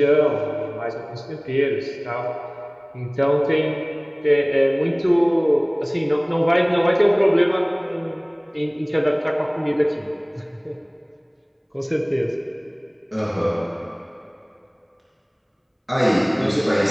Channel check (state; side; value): identical; both; correlation 1.00